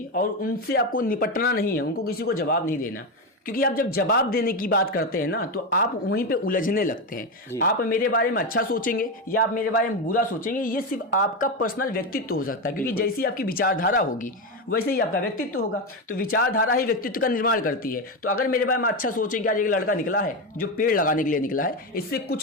और उनसे आपको निपटना नहीं है, उनको किसी को जवाब नहीं देना। क्योंकि आप जब जवाब देने की बात करते हैं ना तो आप वहीं पे उलझने लगते हैं। आप मेरे बारे में अच्छा सोचेंगे या आप मेरे बारे में बुरा सोचेंगे, ये सिर्फ आपका पर्सनल व्यक्तित्व हो सकता है, क्योंकि जैसी आपकी विचारधारा होगी वैसे ही आपका व्यक्तित्व होगा। तो विचारधारा ही व्यक्तित्व का निर्माण करती है। तो अगर मेरे बारे में अच्छा सोचेंगे, आज एक लड़का निकला है जो पेड़ लगाने के लिए निकला है, इससे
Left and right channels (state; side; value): normal; both; correlation 0.12